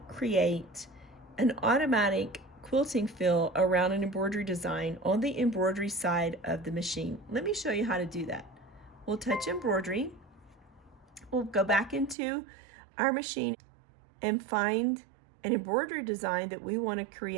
create an automatic quilting fill around an embroidery design on the embroidery side of the machine. Let me show you how to do that. We'll touch embroidery. We'll go back into our machine and find an embroidery design that we want to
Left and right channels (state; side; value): drops out; left; at 12.2 s